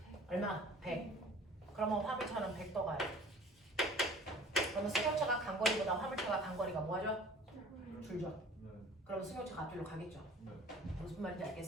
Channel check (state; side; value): normal; both; correlation 0.47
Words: 얼마? 100. 그러면 화물차는 100 더 가요. 그러면 승용차가 간 거리보다 화물차가 간 거리가 뭐하죠? 줄죠? 네. 그러면 승용차가 앞뒤로 가겠죠? 네. 무슨 말인지